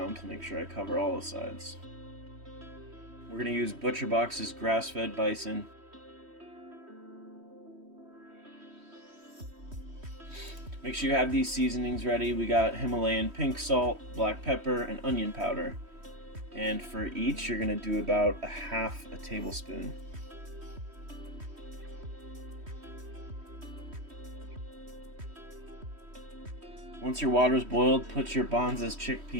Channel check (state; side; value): late; left; 3.1 ms